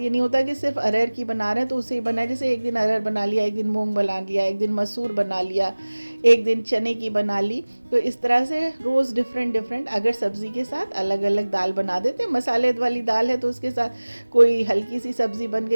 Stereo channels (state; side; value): inverted; both; correlation -1.00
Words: नहीं होता कि सिर्फ अरहर की बना रहे हैं तो उसे ही बनाए, जैसे एक दिन अरहर बना लिया, एक दिन मूंग बना लिया, एक दिन मसूर बना लिया, एक दिन चने की बना ली। तो इस तरह से रोज़ डिफरेंट अगर सब्ज़ी के साथ अलग अलग दाल बना देते हैं। मसाले वाली दाल है तो उसके साथ कोई हल्की सी सब्ज़ी बन